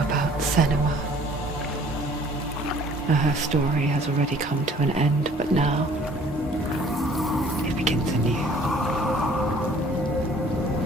Senua. Her story has already come to an end, but now it begins anew.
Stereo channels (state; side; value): normal; both; correlation 0.55